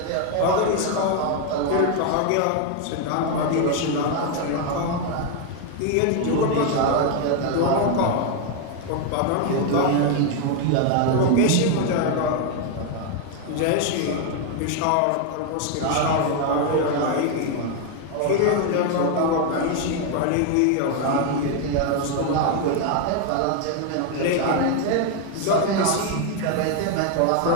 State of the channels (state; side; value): different; both; correlation 0.01